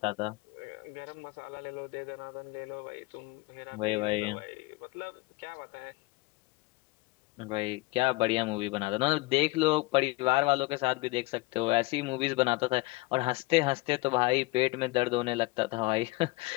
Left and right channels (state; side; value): quieter; right; 22.0 dB